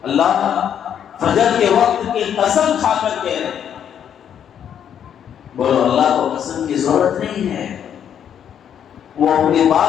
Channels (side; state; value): right; quieter; 9.0 dB